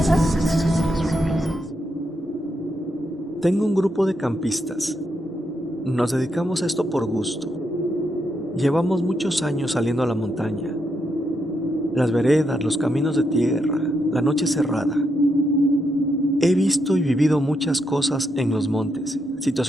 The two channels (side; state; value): both; normal; correlation 0.81